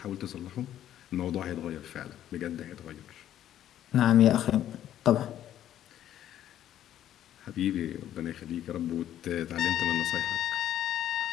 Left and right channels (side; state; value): right; quieter; 11.6 dB